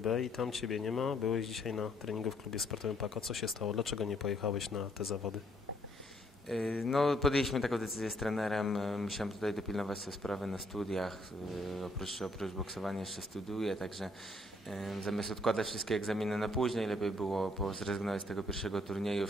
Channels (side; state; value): both; normal; correlation 0.68